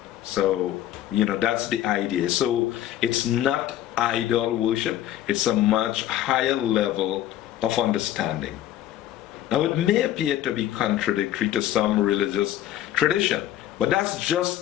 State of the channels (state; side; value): quieter; right; 12.5 dB